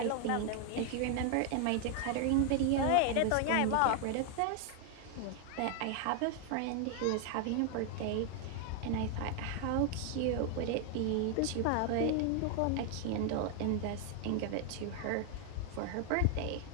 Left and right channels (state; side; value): different; both; correlation 0.00